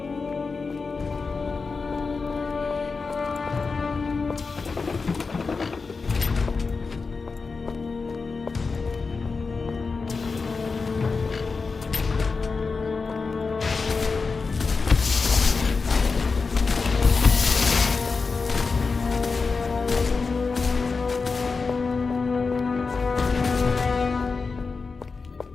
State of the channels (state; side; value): quieter; right; 4.5 dB